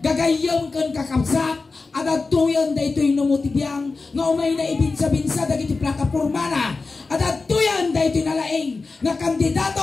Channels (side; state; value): right; quieter; 4.0 dB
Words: Gagayam kan kakabsat, at ito'y da ito'y numutibiyang nga umay na ibinsa-binsa dagiti plataporma na. At atoyan da ito'y nalaing nga